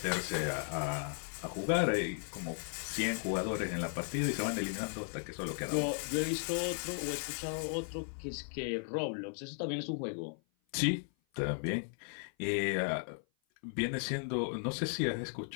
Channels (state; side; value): silent; right; 54 dB below the other